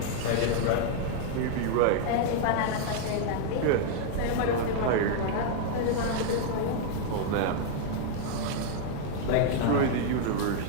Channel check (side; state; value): both; different; correlation -0.01